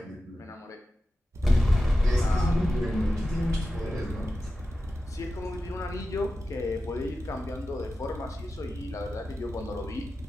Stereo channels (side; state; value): both; normal; correlation 0.93